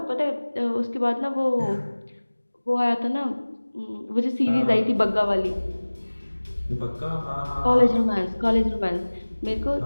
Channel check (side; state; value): both; inverted; correlation -1.00